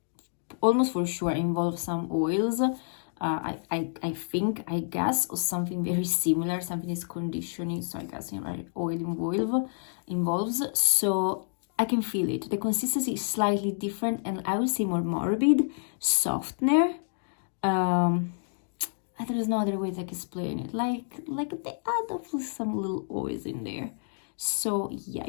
almost for sure involves some oils, I think, I guess, or something very similar, something is conditioning, so I guess, you know, oil involves, so I can feel it. The consistency is slightly different, and I would say more morbid, softener. There is no other way to explain it. Like they add up some little oils in there. So yeah,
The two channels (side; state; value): right; silent; digital silence